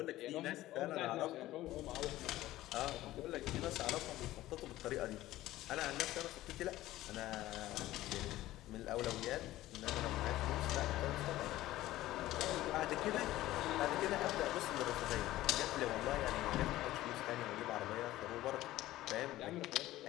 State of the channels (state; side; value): quieter; right; 15.7 dB